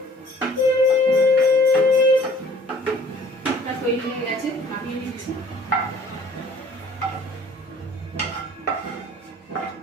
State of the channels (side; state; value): both; normal; correlation 0.53